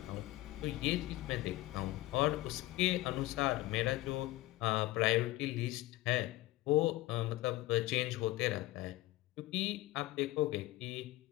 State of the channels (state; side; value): quieter; right; 17.7 dB